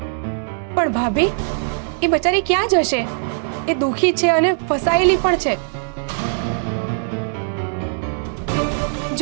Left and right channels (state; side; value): silent; left; digital silence